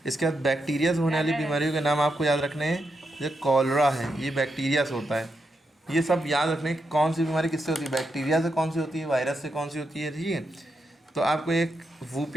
इसके बाद बैक्टीरिया से होने वाली बीमारियों के नाम आपको याद रखने हैं। जैसे कॉलरा है, ये बैक्टीरिया से होता है। ये सब याद रखने कि कौन सी बीमारी किससे होती है, बैक्टीरिया से कौन सी होती है, वायरस से कौन सी होती है। ठीक है। तो आपको एक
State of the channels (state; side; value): normal; both; correlation 0.84